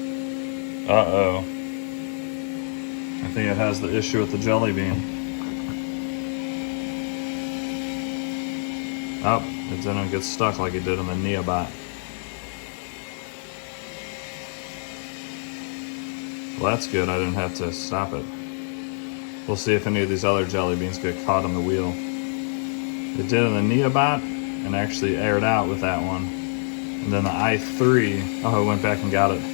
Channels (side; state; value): right; silent; digital silence